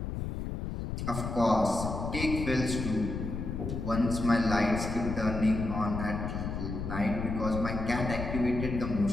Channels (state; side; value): noise; left; rumble, 4 dB below the sound